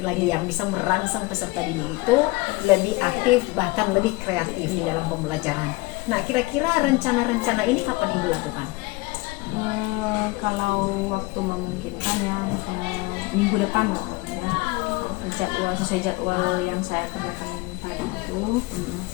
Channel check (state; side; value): quieter; right; 22.7 dB